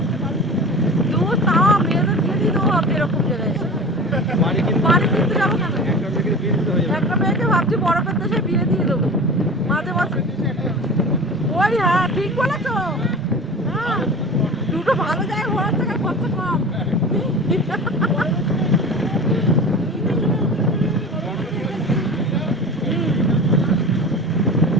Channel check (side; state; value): both; normal; correlation 0.35